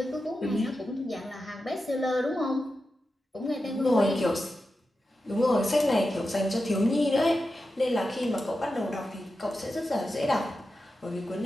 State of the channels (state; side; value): normal; both; correlation 0.91